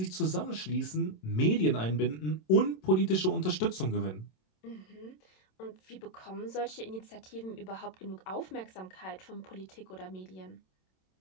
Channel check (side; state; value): right; late; 27 ms